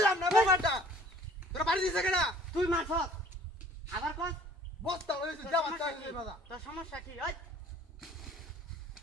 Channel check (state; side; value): normal; both; correlation 0.52